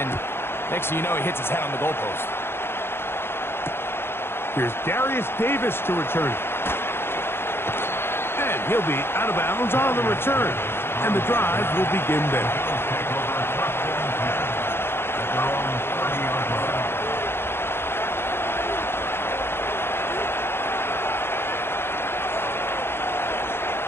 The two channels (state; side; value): late; right; 0.11 ms